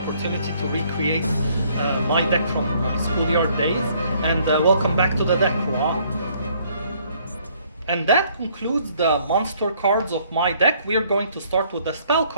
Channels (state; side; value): inverted; both; correlation -0.64